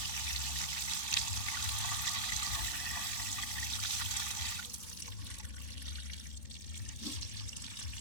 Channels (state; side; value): late; right; 3.6 ms